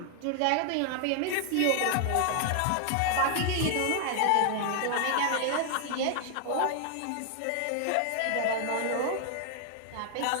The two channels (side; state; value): both; different; correlation 0.00